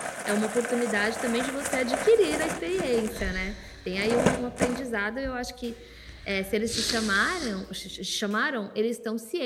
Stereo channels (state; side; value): identical; both; correlation 1.00